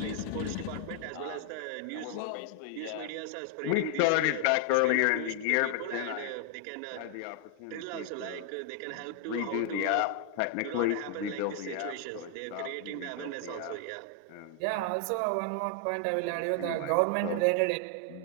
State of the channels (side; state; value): both; different; correlation 0.00